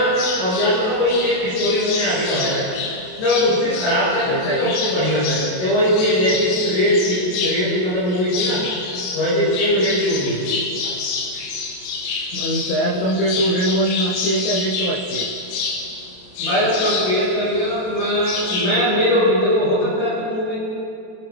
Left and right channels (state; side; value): late; right; 28 ms